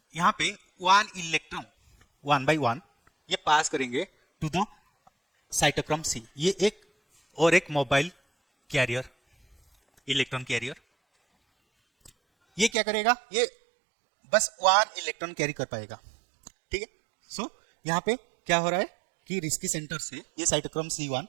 यहाँ पे 1 इलेक्ट्रॉन 1 by 1 ये पास करेंगे टू द साइटोक्रोम C, ये एक और एक मोबाइल कैरियर इलेक्ट्रॉन कैरियर, ये क्या करेगा ये बस 1 इलेक्ट्रॉन कैरी कर पाएगा, ठीक है। सो यहाँ पे क्या हो रहा है कि रिस्की सेंटर से ये साइटोक्रोम C1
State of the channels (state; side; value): drops out; left; at 12.7 s